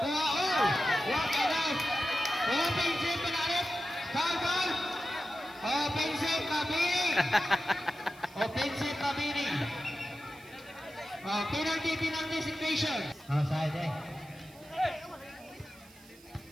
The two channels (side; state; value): right; noise; hiss, 24 dB below the sound